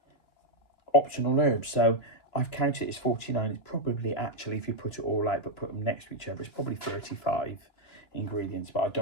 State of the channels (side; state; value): right; late; 2.9 ms